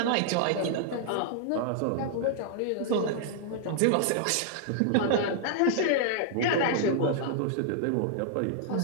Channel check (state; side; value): different; both; correlation -0.01